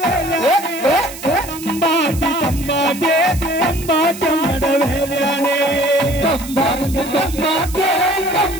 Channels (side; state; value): right; noise; hiss, 13 dB below the sound